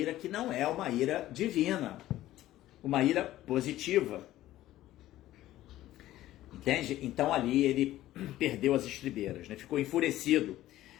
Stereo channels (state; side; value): quieter; right; 14.7 dB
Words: que não é uma ira divina, uma ira positiva. Entende? Então ali ele perdeu as estribeiras, né? Ficou enfurecido.